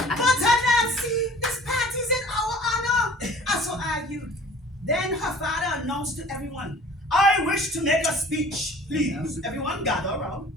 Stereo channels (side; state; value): both; normal; correlation 0.48